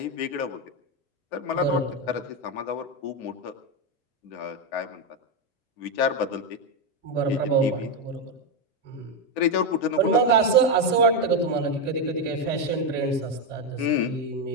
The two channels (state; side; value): normal; both; correlation 0.07